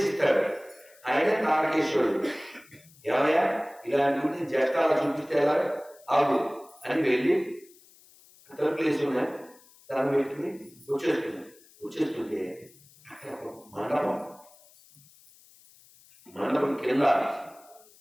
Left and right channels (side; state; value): left; noise; hiss, 26 dB below the sound